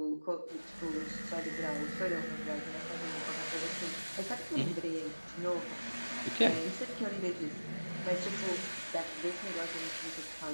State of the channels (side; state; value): both; inverted; correlation -1.00